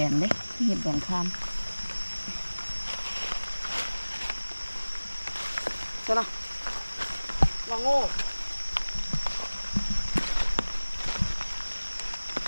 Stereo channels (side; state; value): both; inverted; correlation -1.00